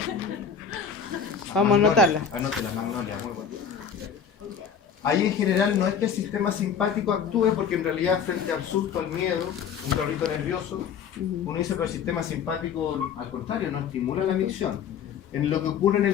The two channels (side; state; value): right; quieter; 7.1 dB